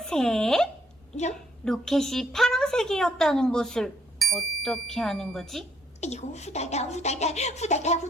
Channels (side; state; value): both; normal; correlation 0.70